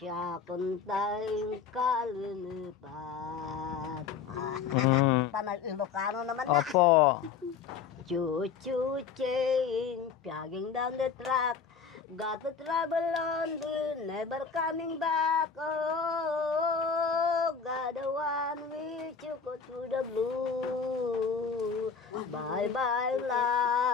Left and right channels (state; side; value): quieter; right; 6.0 dB